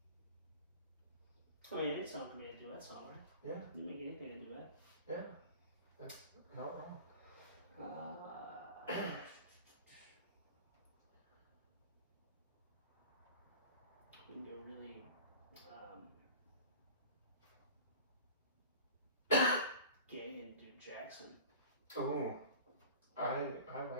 I mean, any song can be a duet song, right? Yeah. You make anything a duet. Yeah. That's not wrong. We can go really, gay and do Jackson. Oh, I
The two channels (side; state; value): both; inverted; correlation -0.38